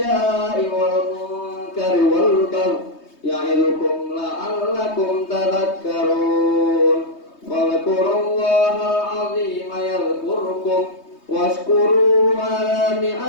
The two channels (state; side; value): late; right; 3.2 ms